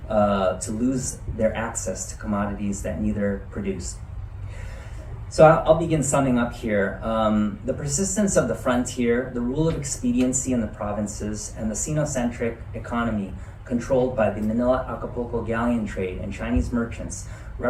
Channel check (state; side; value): identical; both; correlation 1.00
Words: to lose their access to commodities that neither produced. So I'll begin summing up here. The persistence of the frontier, the rule of expediency in the provinces, and the Sinocentric economy controlled by the Manila-Acapulco galleon trade and Chinese merchants